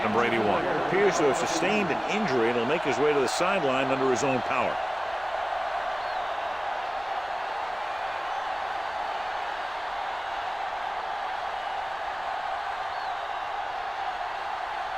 Number 81 appears to have sustained an injury and will make his way to the sideline under his own power.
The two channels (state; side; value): noise; right; rumble, 25 dB below the sound